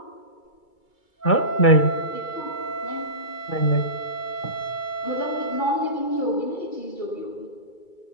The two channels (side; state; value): right; late; 2.3 ms